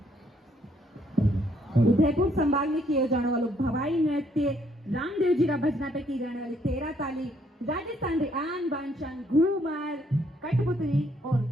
उदयपुर संभाग में किए जाने वाले भवाई नृत्य रामदेव जी का भजना पे की जाने वाली 13 ताली, राजस्थान आन बांचन, घूमर, कठपुतली और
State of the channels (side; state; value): both; normal; correlation 0.69